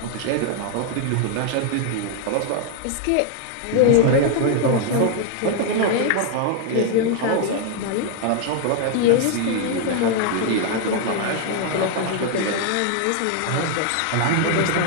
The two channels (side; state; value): both; different; correlation 0.00